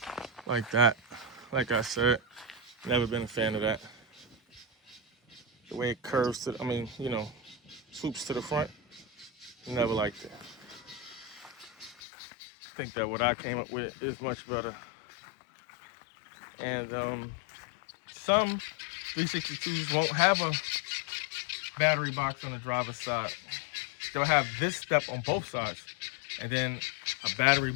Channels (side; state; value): right; drops out; at 12.0 s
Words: Like that. Like I said, never been a fan of that. The way it curves to, swoops to the front, never liked it. I think that what I came up with is much better. And some 362s won't have a battery box on the driver's side. They'll have this step on both sides, and then a battery